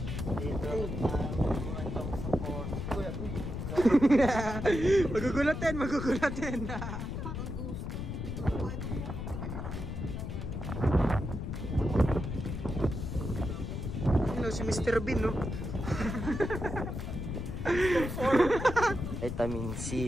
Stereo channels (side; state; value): left; noise; rumble, 5 dB below the sound